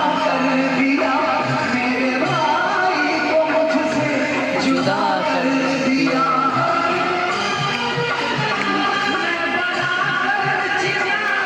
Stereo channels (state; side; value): identical; both; correlation 1.00